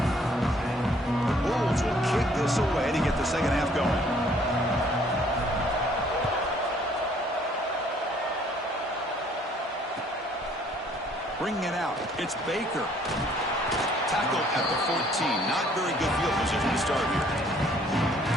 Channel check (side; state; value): both; normal; correlation 0.61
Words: The Bulls will kick this away to get the second half going. Bringing it out, it's Baker. Tackle at the 14. Not very good field position to start here.